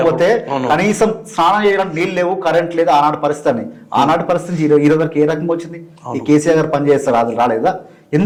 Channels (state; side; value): identical; both; correlation 1.00